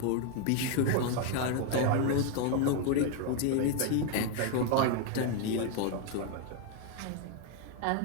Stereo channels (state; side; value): different; both; correlation 0.01